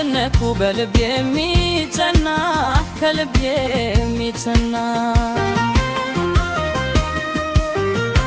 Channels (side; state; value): both; identical; correlation 1.00